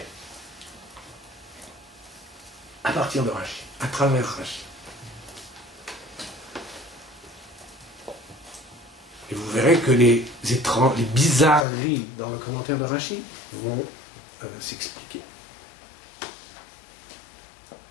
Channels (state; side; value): drops out; right; at 11.7 s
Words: À partir de Rashi, à travers Rashi. Et vous verrez que les bizarreries dans le commentaire de Rashi vont s'expliquer.